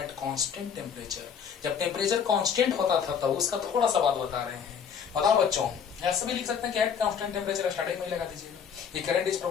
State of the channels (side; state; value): right; quieter; 7.3 dB